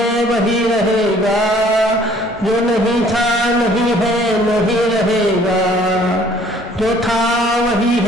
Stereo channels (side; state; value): both; normal; correlation 0.57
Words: वही रहेगा, जो नहीं था नहीं है नहीं रहेगा, जो था वही